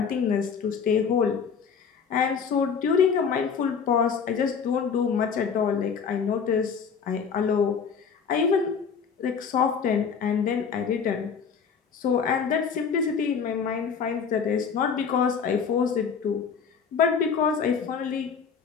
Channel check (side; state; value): right; quieter; 6.3 dB